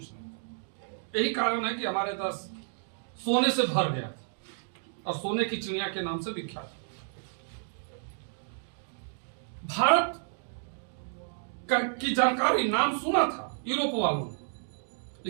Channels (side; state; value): left; silent; digital silence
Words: नहीं था। यही कारण है कि हमारे देश सोने से भर गया था और सोने की चिड़िया के नाम से विख्यात। भारत की जानकारी, नाम सुना था यूरोप वालों ने,